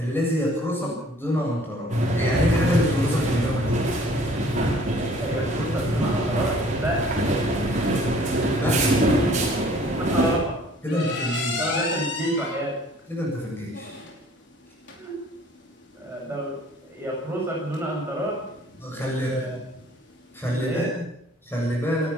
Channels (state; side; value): normal; both; correlation 0.55